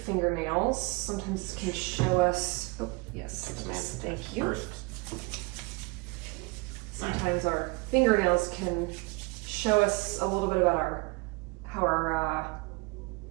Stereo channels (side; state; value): left; quieter; 27.3 dB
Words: Sometimes this can show us, oh, yes, thank you. First. Sometimes our fingernails can show us a little bit about how our